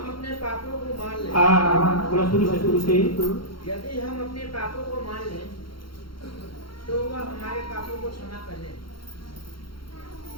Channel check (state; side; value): late; right; 0.73 ms